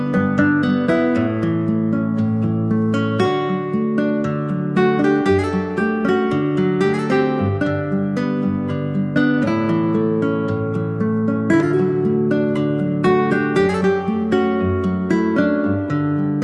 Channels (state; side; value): identical; both; correlation 1.00